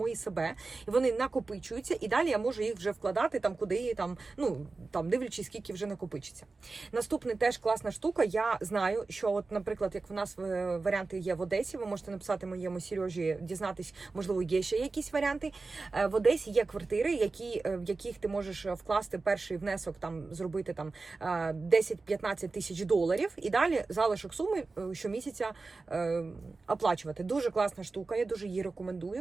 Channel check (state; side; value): quieter; left; 3.8 dB